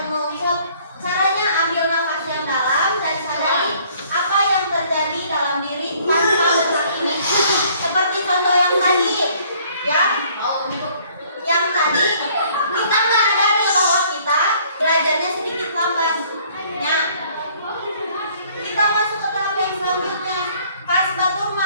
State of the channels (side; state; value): both; inverted; correlation -0.59